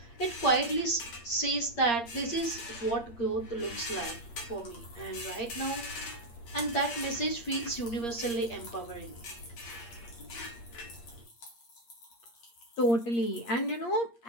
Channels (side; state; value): right; late; 8.6 ms